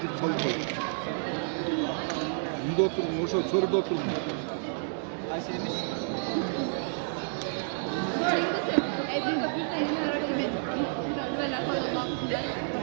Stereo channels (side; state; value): left; silent; digital silence